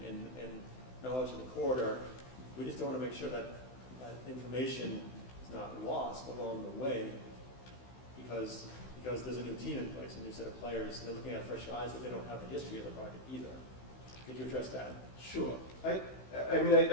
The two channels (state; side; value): late; right; 16 ms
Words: and knowledge of the corridor. We just don't want to make sure that information is not lost along the way because there's a new team in place, a new set of players. They're looking at fresh eyes, but they don't have the history of the project either. Could you address that? Sure. I mean,